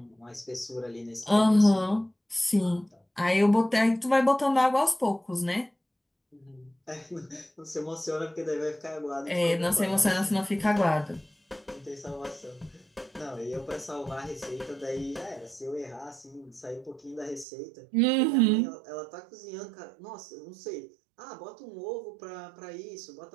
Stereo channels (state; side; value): drops out; left; at 17.4 s